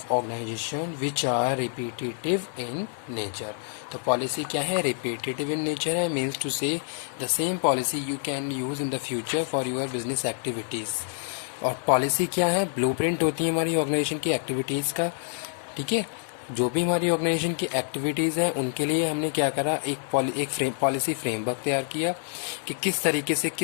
organization which are repetitive in nature. तो policy क्या है? Repetitive in nature है, means to say the same policy you can use in the future for your business activities. और policy क्या है? Blueprint होती है हमारी organization की activities का. ठीक है, जो भी हमारी ऑर्गेनाइजेशन की एक्टिविटीज़ हैं उनके लिए हमने क्या करा, एक पॉलिसी फ्रेमवर्क तैयार किया कि किस तरीके से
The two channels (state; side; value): silent; right; digital silence